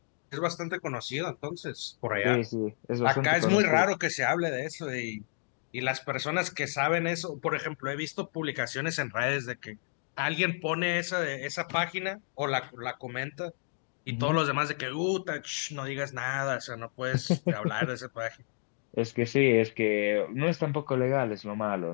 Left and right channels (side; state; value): right; silent; 57 dB below the other